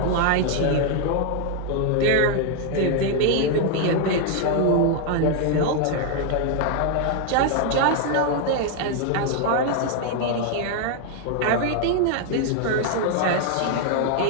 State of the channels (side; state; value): both; different; correlation 0.00